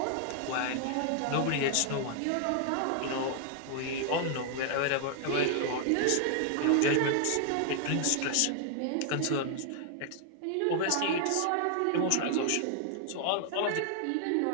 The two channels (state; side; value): different; both; correlation 0.00